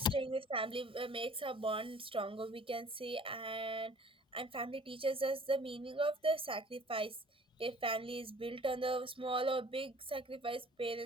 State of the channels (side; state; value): both; normal; correlation 0.51